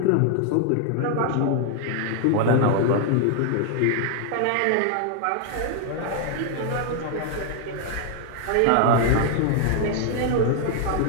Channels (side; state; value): both; different; correlation 0.00